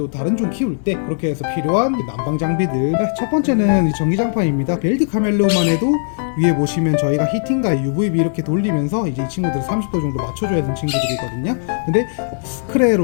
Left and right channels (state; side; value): silent; right; digital silence